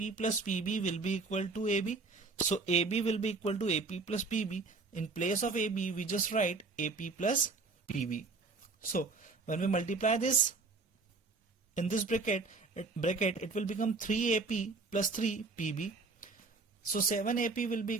plus PB will be equal to AB. So AB will be equal to AP plus PB. In place of AB, we just write AP plus PB. So when we multiply this in this bracket it will become 3AP plus 3PB. So 7AP will be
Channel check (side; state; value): left; quieter; 3.9 dB